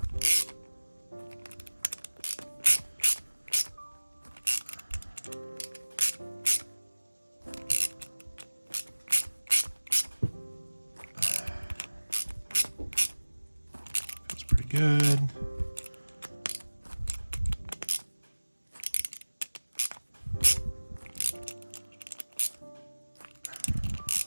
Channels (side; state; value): both; inverted; correlation -1.00